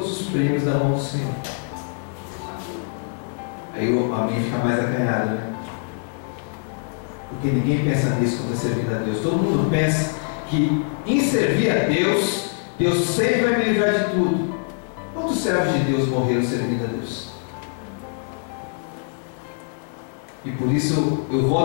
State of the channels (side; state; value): right; silent; 63 dB below the other